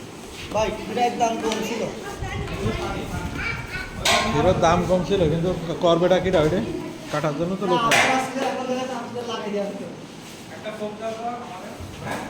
ভাই এটার দাম কম ছিল হিরোর দাম কম ছিল কিন্তু করবেটা কিটা ওইটা কাটার জন্য তো লোক একটা ফোন দাও আমাদের হ্যাঁ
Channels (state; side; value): identical; both; correlation 1.00